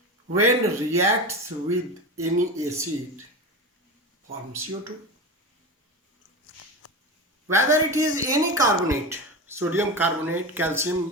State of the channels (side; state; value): both; normal; correlation 0.25